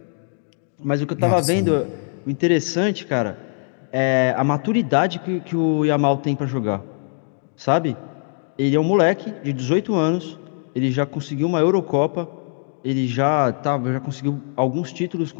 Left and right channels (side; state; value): right; silent; digital silence